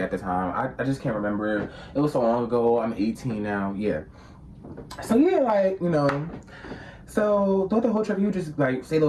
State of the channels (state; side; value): identical; both; correlation 1.00